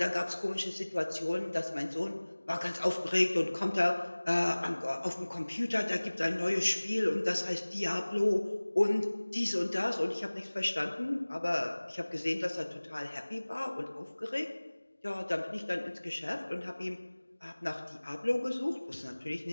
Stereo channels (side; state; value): both; inverted; correlation -1.00